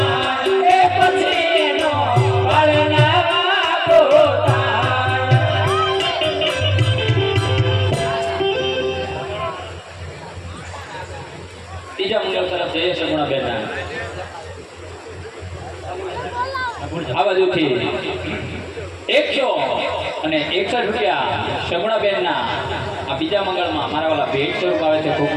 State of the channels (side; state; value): both; identical; correlation 1.00